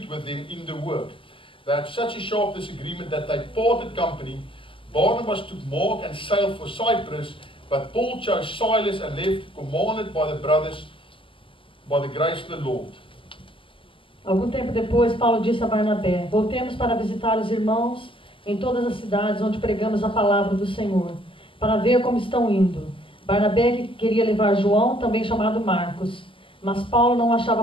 with them in the work. They had such a sharp disagreement that they parted company. Barnabas took Mark and sailed for Cyprus, but Paul chose Silas and left, commanded by the brothers by the grace of the Lord. Algum tempo depois, Paulo disse a Barnabé: Voltemos para visitar os irmãos em todas as cidades onde pregamos a palavra do Senhor, para ver como estão indo. Barnabé queria levar João, também chamado Marcos, mas Paulo não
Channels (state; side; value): late; right; 0.25 ms